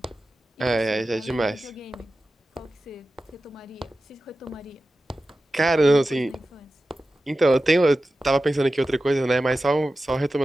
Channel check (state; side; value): normal; both; correlation 0.94